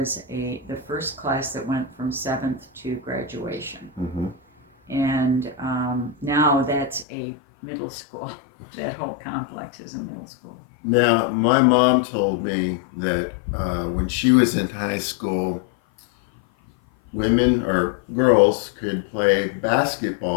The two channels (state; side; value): drops out; right; at 7.1 s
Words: the first class that went from 7th to graduation. Mm-hmm. And now that's a middle school. That whole complex is a middle school. Now, my mom told me that when she was in high school, women or girls could play